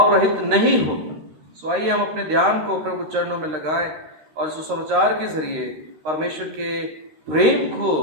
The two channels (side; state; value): left; late; 13 ms